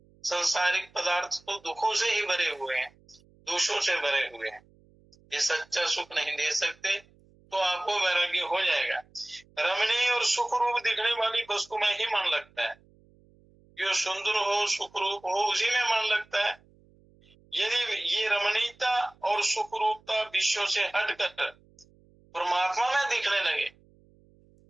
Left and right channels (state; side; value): noise; right; hum, 30 dB below the sound